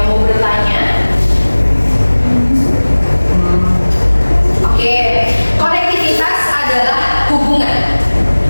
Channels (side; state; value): both; inverted; correlation -1.00